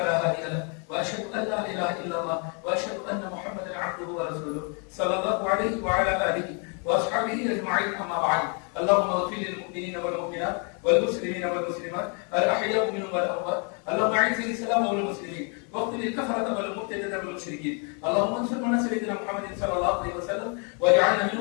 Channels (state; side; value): quieter; right; 37.8 dB